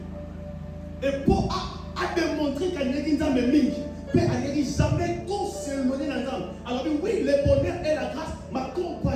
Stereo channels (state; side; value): identical; both; correlation 1.00